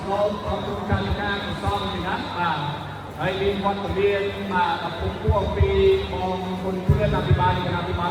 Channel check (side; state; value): both; identical; correlation 1.00